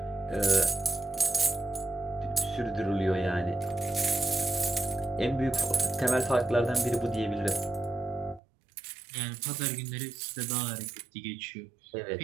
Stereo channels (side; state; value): left; drops out; at 8.4 s